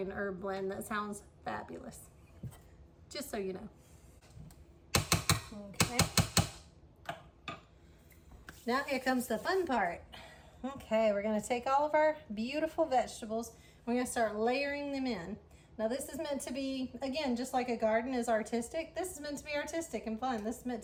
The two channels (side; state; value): both; identical; correlation 1.00